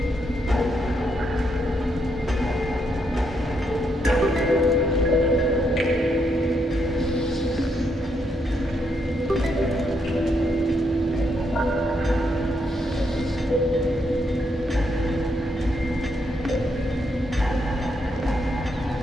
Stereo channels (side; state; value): both; normal; correlation 0.78